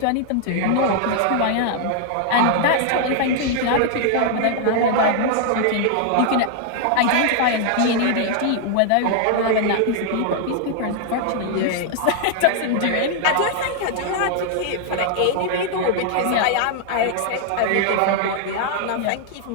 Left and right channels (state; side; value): different; both; correlation 0.00